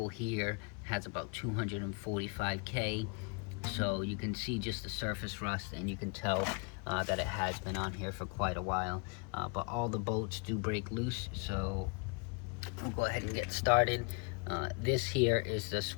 here has about 245K, so you can see just the surface rust, and you can tell that it has been on here for quite a while. But all the bolts do break loose, so we'll go ahead and get started. This here is the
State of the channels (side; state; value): right; quieter; 33.5 dB